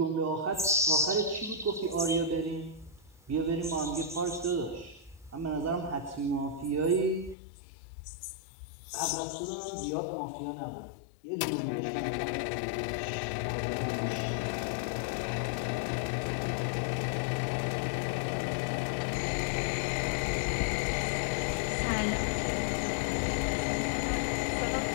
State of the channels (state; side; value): drops out; right; at 7.4 s